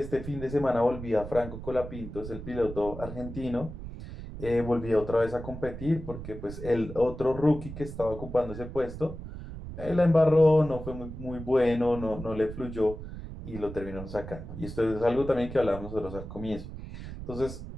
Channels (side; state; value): right; noise; rumble, 10 dB below the sound